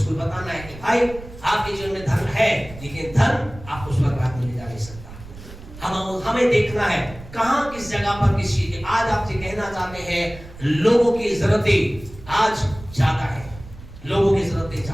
बताना है कि भाई आपके जीवन में धन है, लेकिन धन आपको स्वर्ग राज्य में ले जा नहीं सकता। हमें देखना है कहां किस जगह पर किस चीज की। आज आपसे कहना चाहते हैं लोगों की जरूरतें आज ज्यादा है, लोगों की जरूरतें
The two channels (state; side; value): noise; right; rumble, 16 dB below the sound